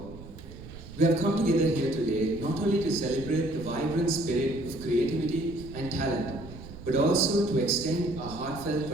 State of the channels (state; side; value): noise; right; rumble, 15 dB below the sound